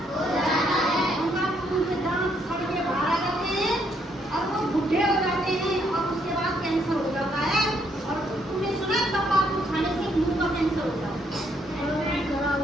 उनका खून के दांत सड़ के बाहर आ जाते हैं और वो बूढ़े हो जाते हैं और उसके बाद कैंसर हो जाता है। और तुमने सुना तंबाकू खाने से मुंह का कैंसर हो जाता है।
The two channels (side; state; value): both; normal; correlation 0.72